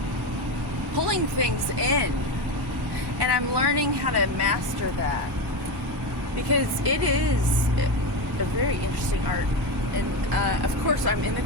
pulling things in. And I'm learning how to master that, because it is a very interesting art. And of course, I'm in the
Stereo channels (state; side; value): normal; both; correlation 0.17